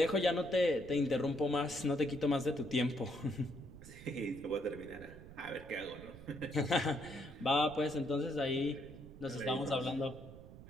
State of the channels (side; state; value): right; noise; rumble, 16 dB below the sound